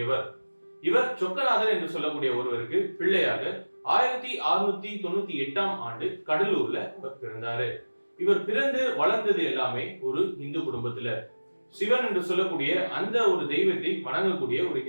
இவர் சொக்கநாதன் என்று சொல்லக்கூடிய ஒருவருக்கு பிள்ளையாக 1698 கடலூர்ல அவர் பிறந்தாரு. இவர் பிறந்து வளர்ந்தது எல்லாமே ஒரு இந்து குடும்பத்துல, சிவன் என்று சொல்லக்கூடிய அந்த ஒரு தெய்வத்தை வணங்கக்கூடிய ஒரு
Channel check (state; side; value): inverted; both; correlation -1.00